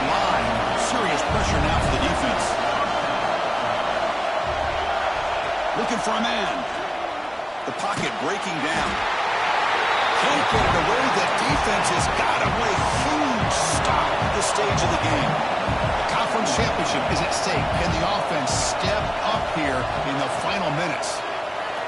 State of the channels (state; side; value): identical; both; correlation 1.00